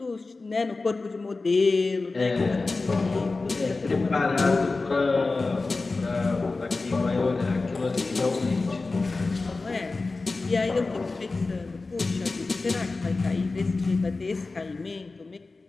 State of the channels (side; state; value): right; quieter; 3.6 dB